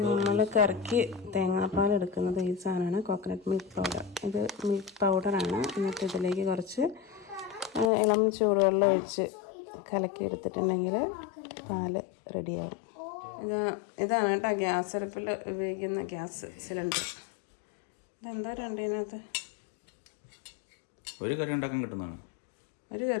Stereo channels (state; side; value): drops out; right; at 7.9 s